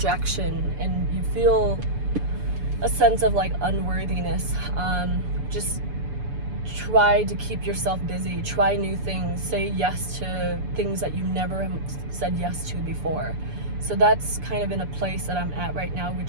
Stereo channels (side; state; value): left; late; 6.9 ms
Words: and you feel a sense of like unworthiness. Just try to keep yourself busy, try new things, say yes to things that you never said yes to before. So that's kind of in a place that I'm at right now,